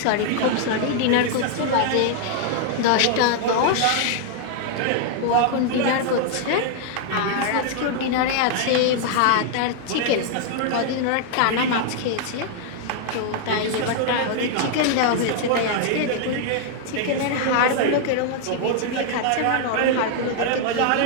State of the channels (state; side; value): different; both; correlation 0.00